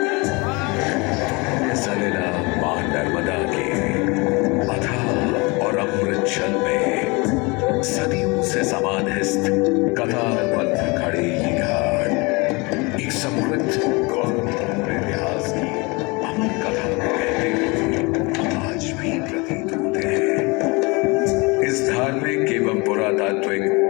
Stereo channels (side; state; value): right; quieter; 27.0 dB